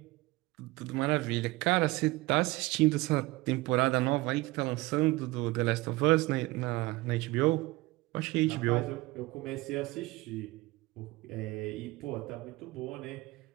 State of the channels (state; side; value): quieter; left; 20.7 dB